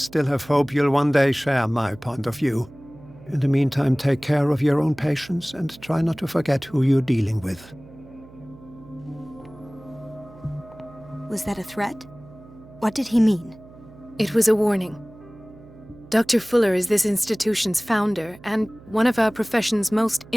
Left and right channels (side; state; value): right; noise; hum, 21 dB below the sound